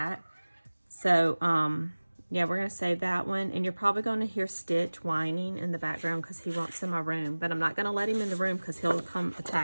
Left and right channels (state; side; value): inverted; both; correlation -1.00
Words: So yeah, we're going to save that one. And you're probably going to hear Stitch whining in the background because he wants in my room, but I'm not going to let him in the room because he'll come